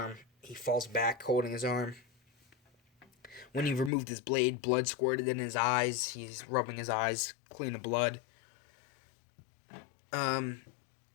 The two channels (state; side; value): drops out; right; at 3.9 s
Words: He falls back holding his arm. When he removed his blade, blood squirted in his eyes. He's rubbing his eyes clean of blood.